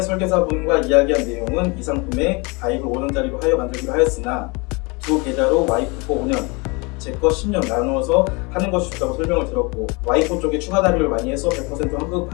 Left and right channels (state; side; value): quieter; right; 28.4 dB